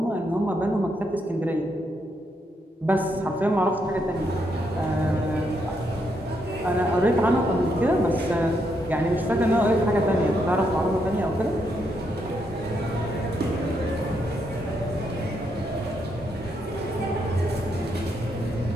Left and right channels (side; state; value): both; normal; correlation 0.78